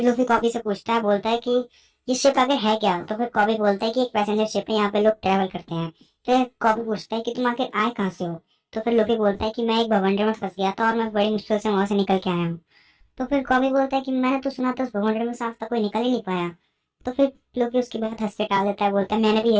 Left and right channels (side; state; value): both; identical; correlation 1.00